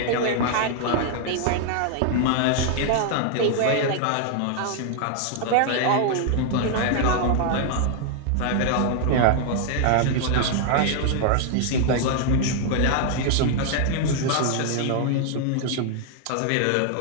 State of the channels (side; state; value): both; different; correlation 0.00